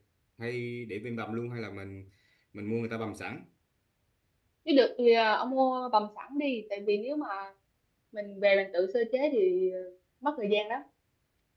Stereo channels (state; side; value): identical; both; correlation 1.00